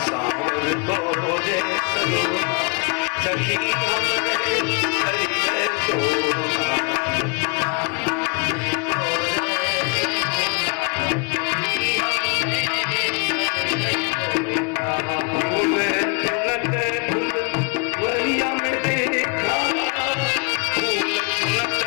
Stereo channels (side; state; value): right; quieter; 33.2 dB